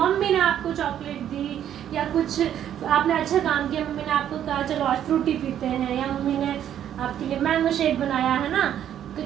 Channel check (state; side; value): quieter; left; 10.3 dB